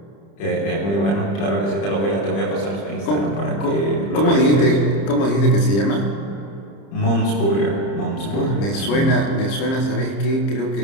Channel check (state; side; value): late; right; 30 ms